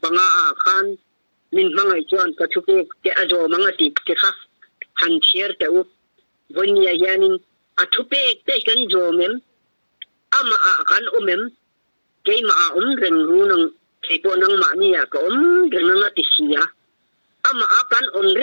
panga khan min mangai chuan ka thupe te ajo mangati te kha han chier te u vonia yanin athupe te kan jo mem ama kan umem kay reng runang kaypo nang maaniya ka reng nga tisiya ama akan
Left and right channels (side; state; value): both; inverted; correlation -1.00